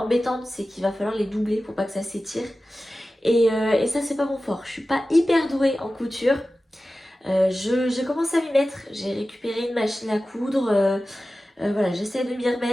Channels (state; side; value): normal; both; correlation 0.95